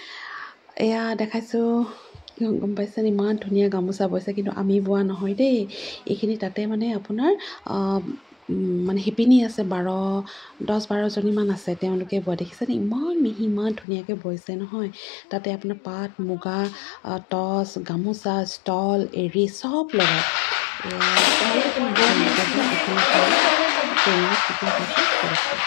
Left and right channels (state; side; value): drops out; right; at 13.9 s